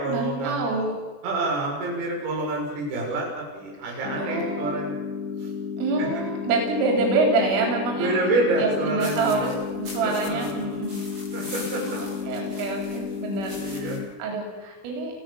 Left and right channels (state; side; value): late; left; 21 ms